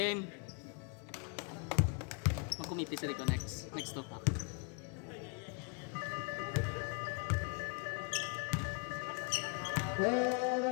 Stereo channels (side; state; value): right; quieter; 34.9 dB